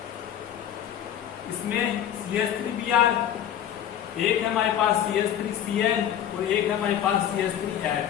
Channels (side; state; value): right; quieter; 10.3 dB